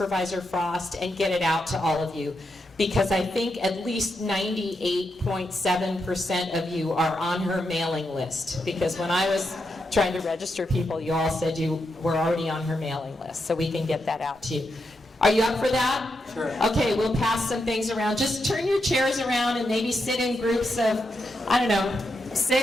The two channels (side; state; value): both; normal; correlation 0.84